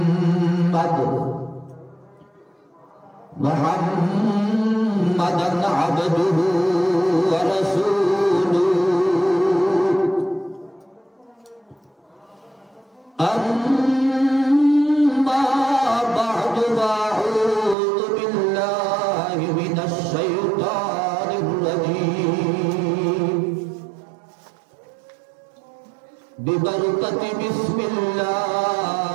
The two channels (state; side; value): drops out; left; at 17.8 s